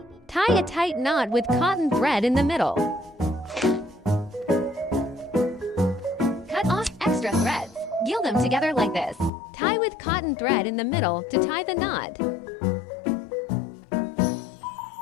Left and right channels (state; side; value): drops out; right; at 9.3 s